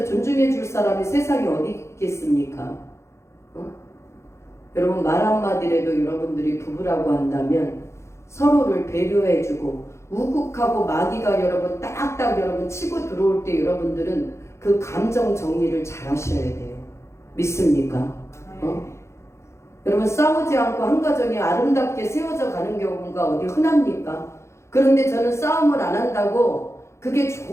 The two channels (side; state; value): right; late; 0.13 ms